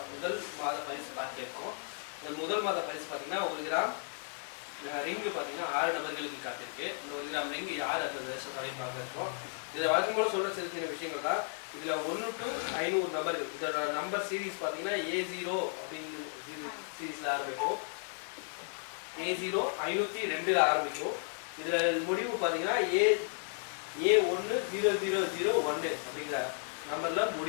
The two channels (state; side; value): silent; right; 55 dB below the other